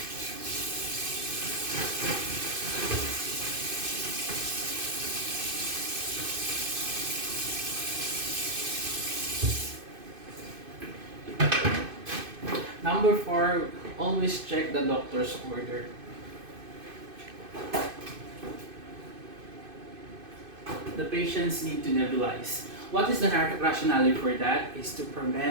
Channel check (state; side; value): late; left; 2.5 ms